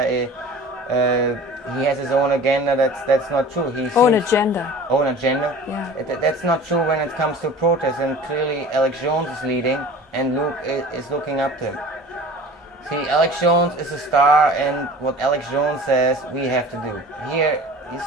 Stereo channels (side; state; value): both; normal; correlation 0.41